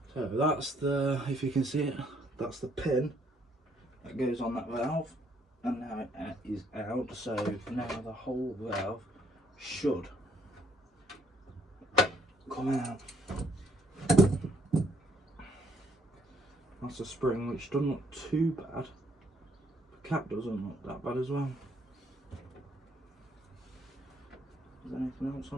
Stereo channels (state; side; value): normal; both; correlation 0.68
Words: So that's the, if you can see it, that's the pin that goes on that valve, and now it is out, so now the whole valve should come out. That's a spring which doesn't look too bad. The cap doesn't look that bad as well. Is there anything else